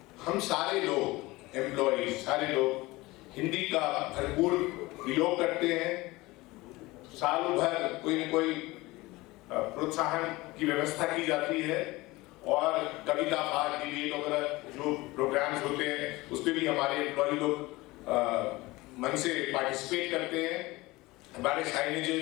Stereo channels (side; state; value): right; quieter; 20.8 dB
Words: हम सारे लोग एम्प्लॉय, सारे लोग हिंदी का भरपूर प्रयोग करते हैं। सालों भर कोई न कोई प्रोत्साहन की व्यवस्था की जाती है, और कविता पाठ, डिबेट वगैरह जो प्रोग्राम्स होते हैं उस पर भी हमारे एम्प्लॉय लोग मन से पार्टिसिपेट करते हैं। हमारे